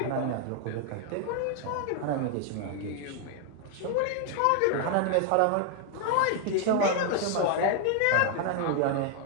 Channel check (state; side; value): different; both; correlation 0.00